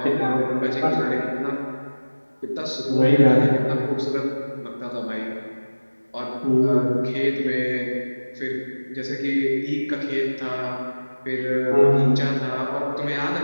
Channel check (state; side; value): inverted; both; correlation -1.00